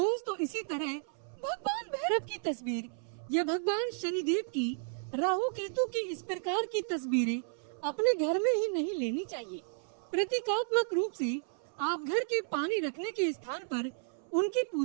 इसी तरह भगवान भैरव की तस्वीर या भगवान शनिदेव की, राहु केतु की इस प्रकार की तस्वीरें अपने घर में ही नहीं लेनी चाहिए। प्रतीकात्मक रूप से आप घर के पानी रखने के स्थान पर उनकी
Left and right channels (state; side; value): silent; left; 56 dB below the other